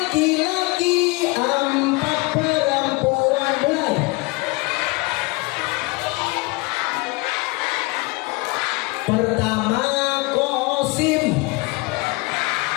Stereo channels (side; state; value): right; quieter; 24.9 dB